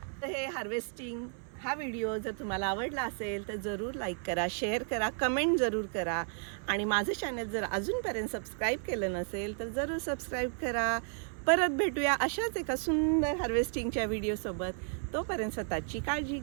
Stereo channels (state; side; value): silent; left; 56 dB below the other